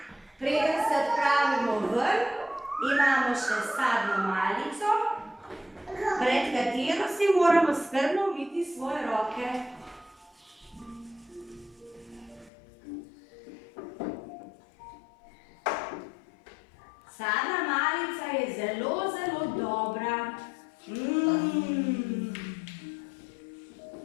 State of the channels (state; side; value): drops out; right; at 12.5 s